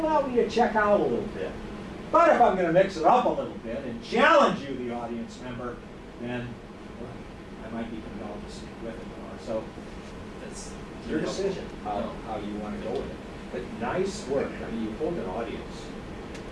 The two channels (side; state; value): both; identical; correlation 1.00